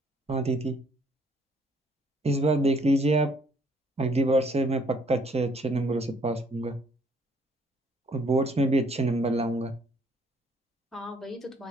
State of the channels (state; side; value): normal; both; correlation 0.64